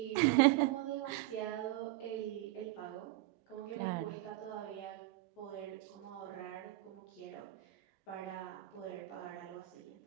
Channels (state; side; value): quieter; left; 17.9 dB